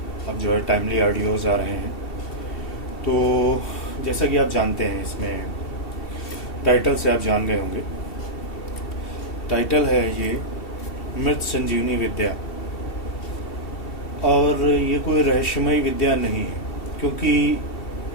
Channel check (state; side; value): late; right; 2.7 ms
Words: अब जो है टाइमली ऑडियोज़ आ रहे हैं। तो जैसा कि आप जानते हैं, इसमें टाइटल से आप जान गए होंगे। टाइटल है ये मृत संजीवनी विद्या। और ये कोई रहस्यमय विद्या नहीं है, क्योंकि